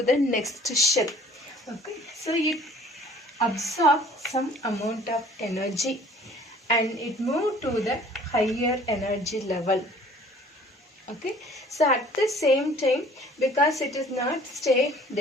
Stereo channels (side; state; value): both; normal; correlation 0.52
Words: the next shell. Okay. So it absorbs some amount of energy and it move to the higher energy level. Okay, so at the same time, because it is not stay,